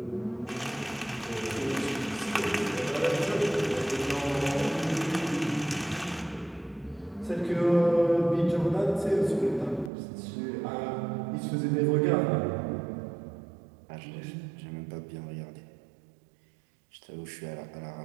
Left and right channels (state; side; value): drops out; left; at 9.9 s